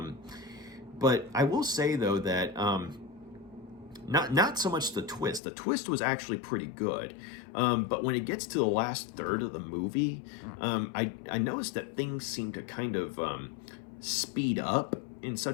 But I will say, though, that not so much the twist. The twist was actually pretty good. But when it gets to the last third of the movie, I noticed that things seem to kind of speed up in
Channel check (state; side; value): drops out; right; at 5.4 s